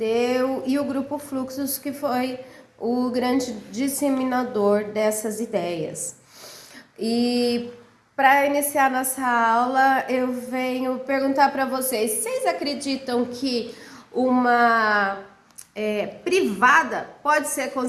e o grupo Fluxus, que foi o grande disseminador dessas ideias. E para iniciar nossa aula, eu venho perguntar para vocês acreditam que uma privada pode ser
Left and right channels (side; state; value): both; identical; correlation 1.00